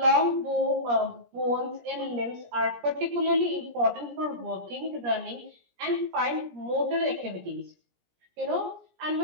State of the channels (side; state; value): left; late; 17 ms